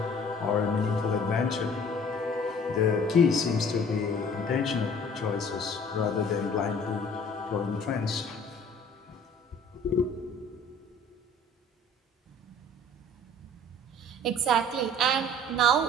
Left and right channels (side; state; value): both; normal; correlation 0.51